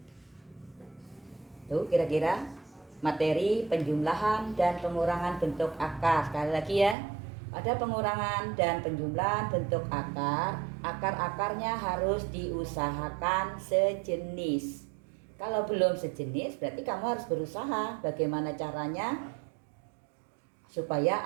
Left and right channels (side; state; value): left; drops out; at 7.0 s